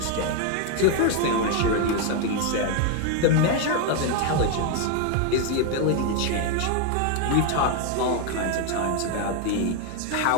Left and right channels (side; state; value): both; different; correlation 0.01